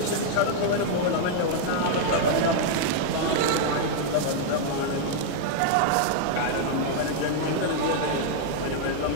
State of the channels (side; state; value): both; different; correlation -0.01